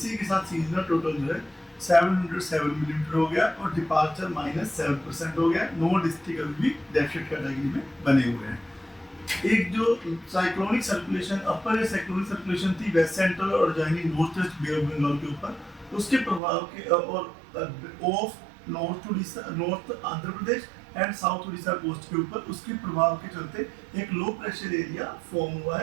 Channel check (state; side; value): drops out; left; at 16.4 s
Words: के साथ सीजनल टोटल जो है 707 मिलीमीटर हो गया और डिपार्चर -7% हो गया। 9 डिस्ट्रिक्ट अभी भी डेफिसिट कैटेगरी में बने हुए हैं। एक जो cyclonic circulation upper cyclonic circulation थी वेस्ट सेंट्रल और adjoining north west bay of Bengal के ऊपर, उसके प्रभाव के और off north Andhra Pradesh and south Orissa coast के ऊपर उसके प्रभाव के चलते एक लो प्रेशर एरिया फॉर्म हुआ